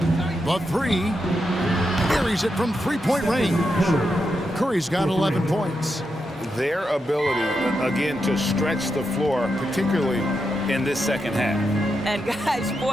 The three. Carries it from three-point range. Curry's got 11 points. Their ability, again, to stretch the floor, particularly in this second half. And guys,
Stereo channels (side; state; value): both; normal; correlation 0.85